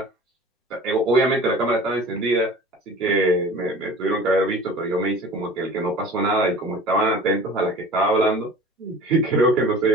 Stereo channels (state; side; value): normal; both; correlation 0.42